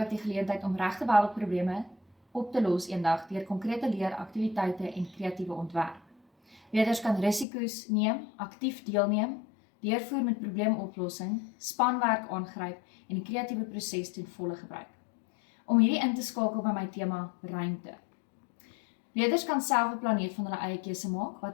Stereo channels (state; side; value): drops out; right; at 7.5 s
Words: die geleentheid om regte wêreldprobleme op te los eendag deur konkrete leeraktiwiteite en kreatiewe ontwerp. Leerders kan risiko's neem, aktief deelneem, deurvoer met probleemoplossing, spanwerk aangryp en die kreatiewe proses ten volle gebruik. Om hierdie in te skakel by my tema ruimte. Leerders kan self 'n planeet van hulle eie keuse maak